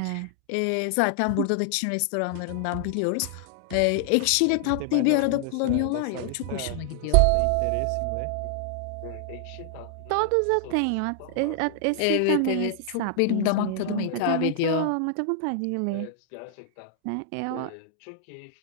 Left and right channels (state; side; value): different; both; correlation 0.00